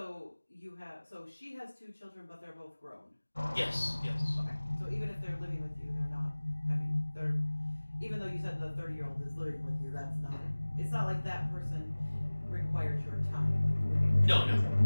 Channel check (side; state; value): both; inverted; correlation -1.00